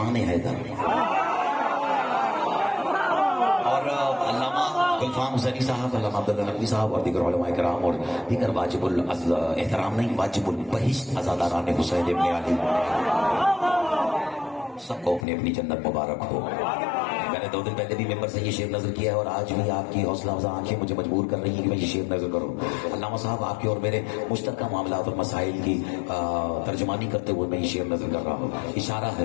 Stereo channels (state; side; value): drops out; right; at 15.2 s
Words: حیدر. اور علامہ گلفام حسینی صاحب، علامہ عبداللہ نقوی صاحب اور دیگر علماء کرام اور دیگر واجب الاحترام نہیں، واجب البہشت عزاداران حسین ابن علی، سب کو اپنی اپنی جنت مبارک ہو. میں نے 2 دن پہلے بھی ممبر سے یہ شعر نظر کیا ہے اور آج بھی آپ کی حوصلہ افزا آنکھیں مجھے مجبور کر رہی ہیں کہ میں یہ شعر نظر کروں. علامہ صاحب، آپ کے اور میرے مشترکہ معاملات اور مسائل کی ترجمانی کرتے ہوئے میں یہ شعر نظر کر رہا ہوں. اشارہ